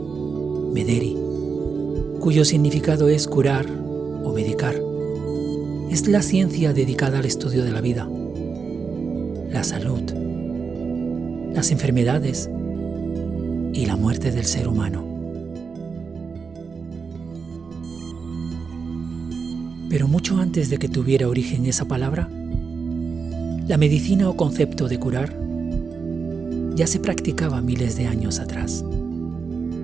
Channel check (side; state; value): left; quieter; 5.3 dB